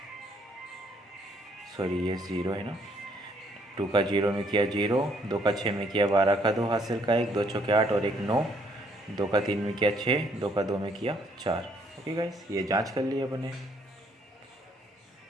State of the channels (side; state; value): both; normal; correlation 0.67